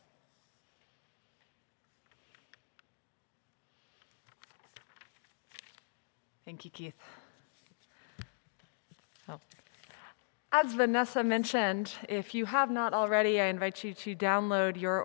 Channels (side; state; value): right; silent; digital silence